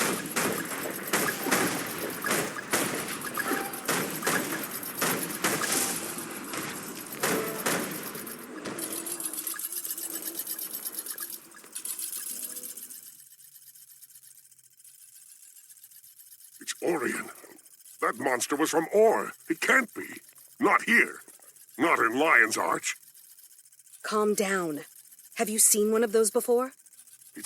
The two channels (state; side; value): identical; both; correlation 1.00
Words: It's Orion. That monster was from Or. It can't be. Not here. Not in Lion's Arch. Calm down. Have you seen one of those before?